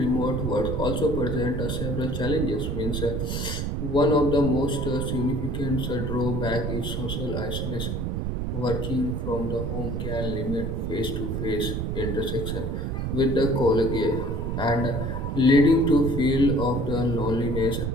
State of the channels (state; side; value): noise; right; rumble, 2 dB below the sound